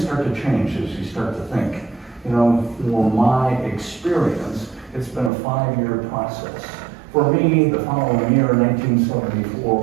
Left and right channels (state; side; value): drops out; left; at 5.3 s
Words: start to change as you start to think. For my experience, it's been a 5-year process. For me, the following year, 1974,